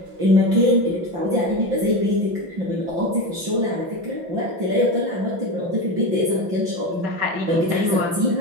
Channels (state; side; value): late; left; 5.9 ms